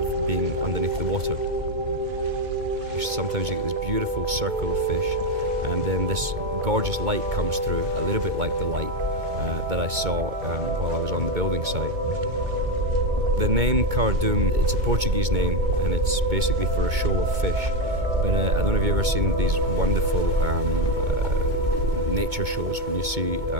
being underneath the water. Sometimes you get this beautiful circle of fish, and then this gorgeous light comes through, a little bit like the light that I saw while I was on the building site. The name Cardume, it's a Portuguese name, and it's basically for a shoal of fish. But I don't know if you've ever seen these wonderful nature shows when you see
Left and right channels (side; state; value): left; late; 2.2 ms